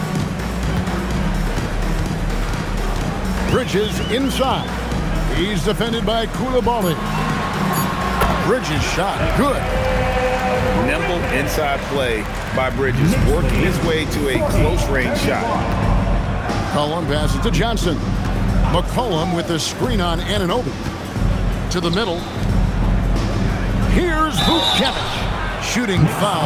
Bridges inside. He's defended by Koulibaly. Bridges shot. Good. Nimble inside play by Bridges, working his way to a close-range shot. McCollum passes to Johnson. McCollum with the screen on Anunoby. To the middle. Here's Vukcevic. Shooting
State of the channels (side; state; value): both; identical; correlation 1.00